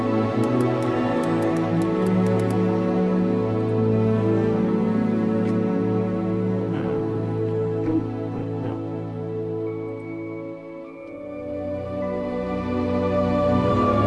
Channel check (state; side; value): identical; both; correlation 1.00